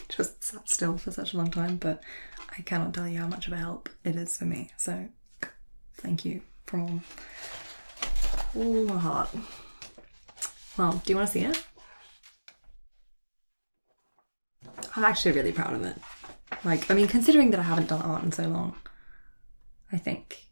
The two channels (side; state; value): both; inverted; correlation -1.00